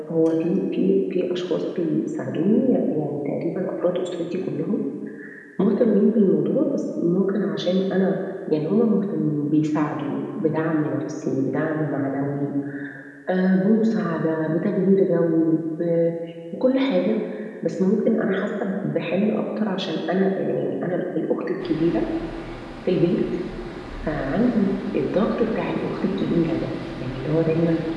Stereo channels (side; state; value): both; identical; correlation 1.00